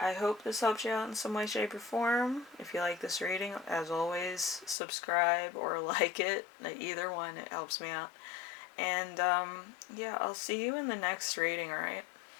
hope this helps you out in some way, shape, or form. If you like this reading, as always, subscribe or like it. Either one, it helps me out. And yeah, I'll see you in the next reading, alright?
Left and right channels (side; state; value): right; drops out; at 4.8 s